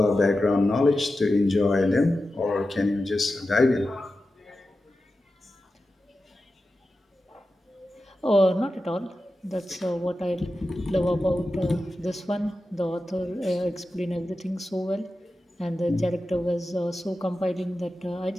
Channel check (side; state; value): both; normal; correlation 0.92